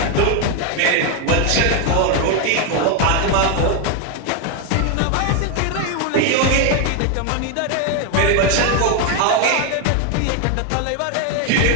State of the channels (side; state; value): both; different; correlation 0.01